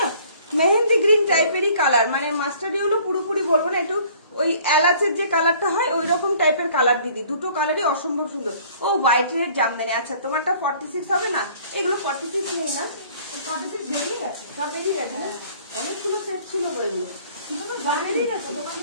না মেহেন্দি গ্রিন টাইপেরই কালার, মানে মাস্টার্ড ইয়েলো পুরোপুরি বলবো না, একটু ওই এলাচের যে কালারটা হয় ওই রকম টাইপের কালার দিদি। দুটো কালারই অসম্ভব সুন্দর। ও হোয়াইট রেড জামদানি। আচ্ছা তোমারটা 46 হবে না? এগুলো 46 নেই না, 46 বেরিয়ে গেছে, সব বেরিয়ে গেছে না, অনেকগুলো সেট ছিল এগুলো, শুধু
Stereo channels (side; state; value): both; inverted; correlation -0.55